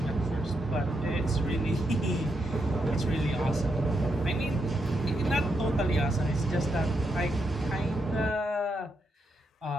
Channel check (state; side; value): normal; both; correlation 0.82